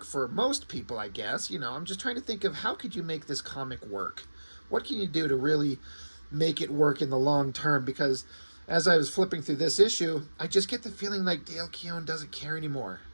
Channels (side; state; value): both; inverted; correlation -1.00